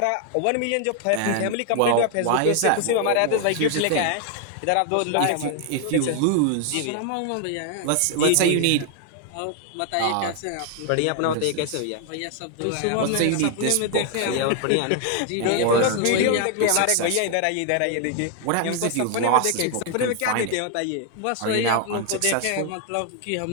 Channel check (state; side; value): different; both; correlation 0.00